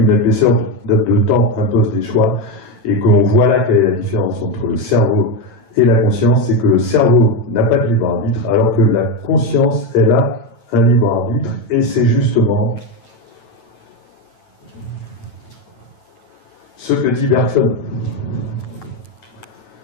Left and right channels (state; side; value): late; right; 9.1 ms